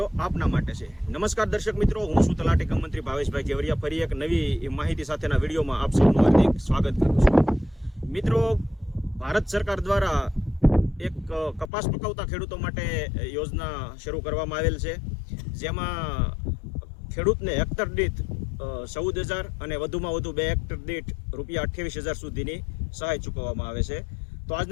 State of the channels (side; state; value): right; drops out; at 11.7 s